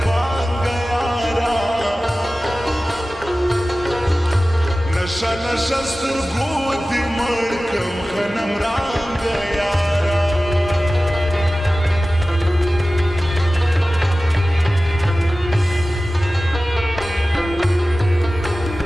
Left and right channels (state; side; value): normal; both; correlation 0.96